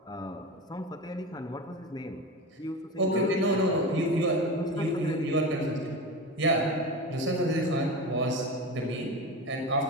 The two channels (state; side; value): normal; both; correlation 0.26